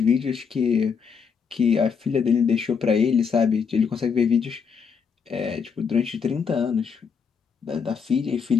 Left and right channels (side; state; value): right; quieter; 6.1 dB